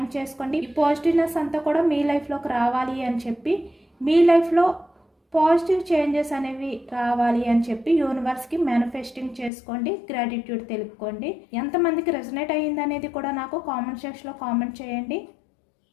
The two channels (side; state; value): right; drops out; at 9.5 s